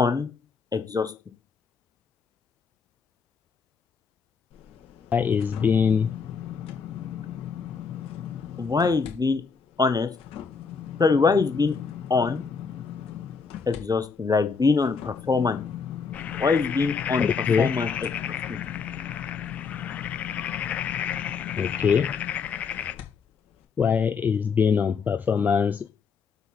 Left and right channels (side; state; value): right; quieter; 5.4 dB